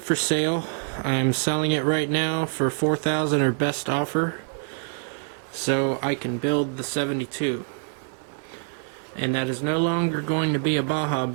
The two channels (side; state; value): left; silent; 61 dB below the other